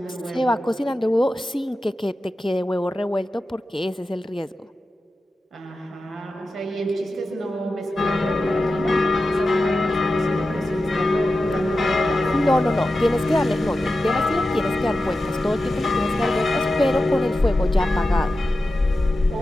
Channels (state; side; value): normal; both; correlation 0.92